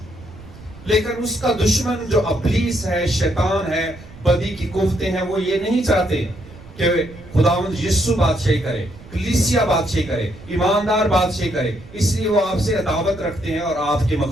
لیکن اس کا دشمن جو ابلیس ہے، شیطان ہے، بدی کی قوتیں ہیں، وہ یہ نہیں چاہتے کہ خداوند یسوع بادشاہی کرے، کلیسیا بادشاہی کرے، ایماندار بادشاہی کرے، اس لیے وہ آپ سے عداوت رکھتے ہیں اور آپ کے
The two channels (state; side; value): noise; right; rumble, 19 dB below the sound